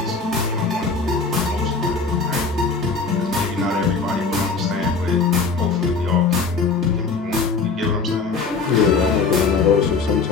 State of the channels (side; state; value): right; quieter; 4.6 dB